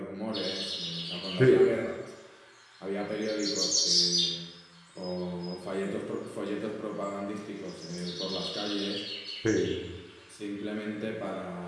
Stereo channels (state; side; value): identical; both; correlation 1.00